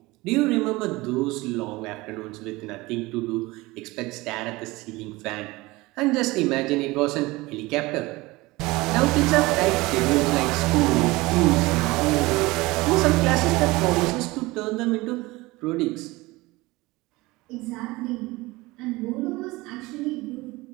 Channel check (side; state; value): left; quieter; 21.3 dB